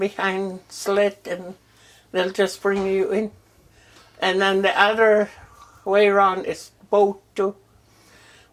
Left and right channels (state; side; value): identical; both; correlation 1.00